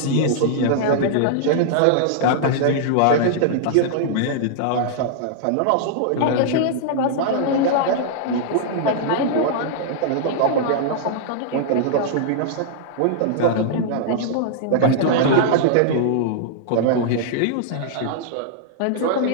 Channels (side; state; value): both; different; correlation -0.01